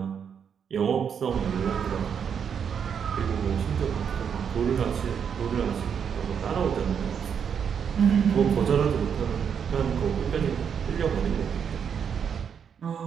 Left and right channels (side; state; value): left; quieter; 7.4 dB